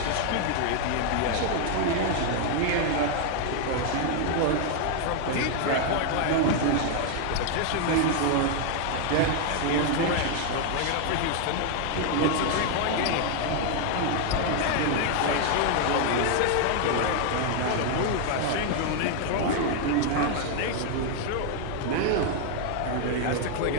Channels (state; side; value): different; both; correlation 0.00